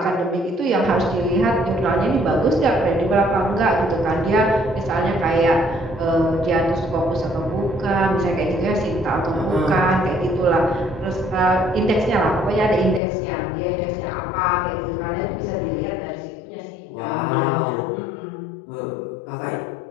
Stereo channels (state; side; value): drops out; right; at 13.0 s